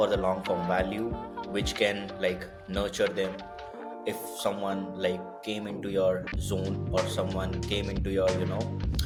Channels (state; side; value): identical; both; correlation 1.00